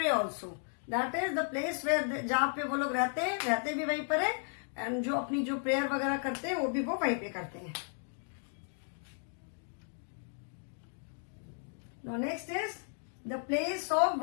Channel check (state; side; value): silent; right; 55 dB below the other